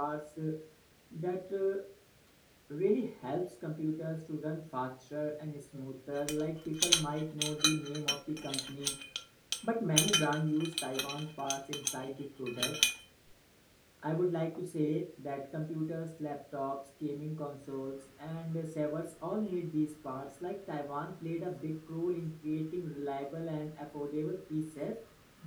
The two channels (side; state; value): both; identical; correlation 1.00